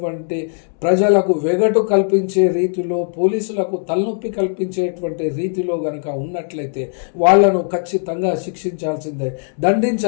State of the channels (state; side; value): silent; right; digital silence